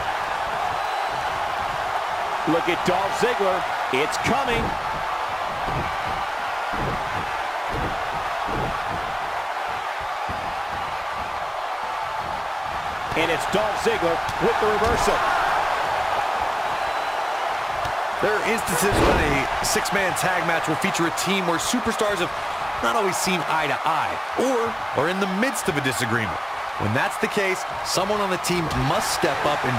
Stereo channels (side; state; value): both; identical; correlation 1.00